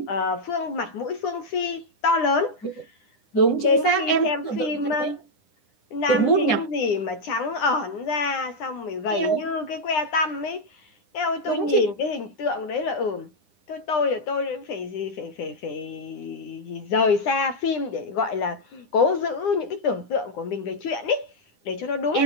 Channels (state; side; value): late; right; 9.9 ms